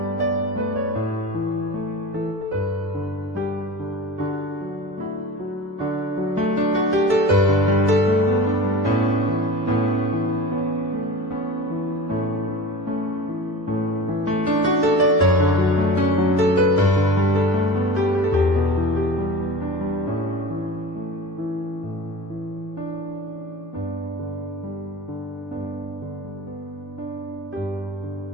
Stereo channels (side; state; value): both; normal; correlation 0.34